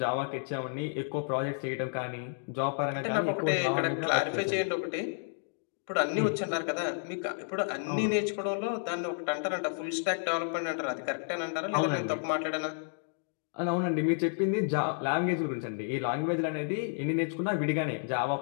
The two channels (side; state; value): right; silent; digital silence